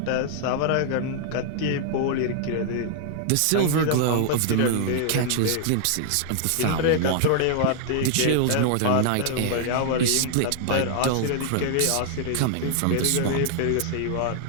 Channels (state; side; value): different; both; correlation 0.00